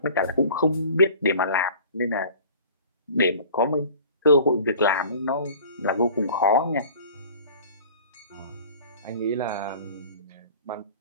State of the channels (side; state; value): both; inverted; correlation -0.46